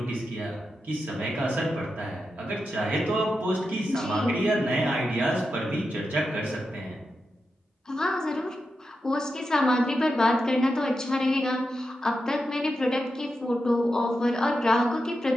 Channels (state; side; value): normal; both; correlation 0.88